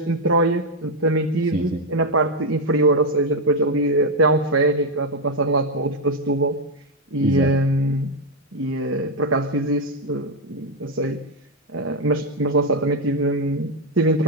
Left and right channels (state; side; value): normal; both; correlation 0.03